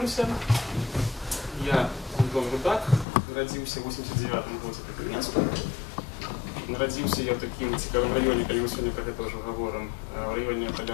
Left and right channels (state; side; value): drops out; right; at 3.1 s